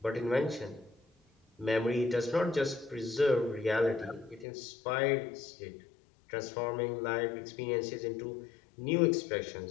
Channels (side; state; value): right; drops out; at 4.5 s